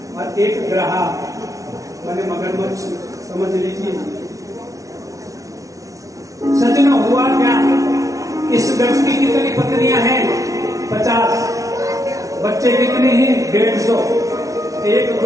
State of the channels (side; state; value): left; late; 0.17 ms